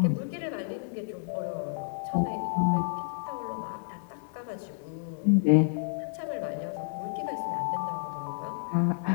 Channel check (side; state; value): right; silent; digital silence